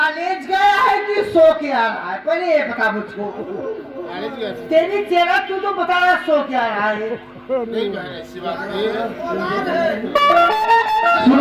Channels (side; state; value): both; identical; correlation 1.00